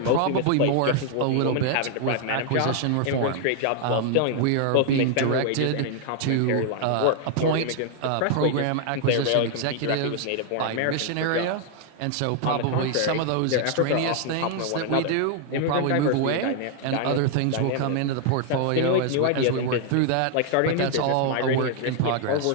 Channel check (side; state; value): both; different; correlation 0.00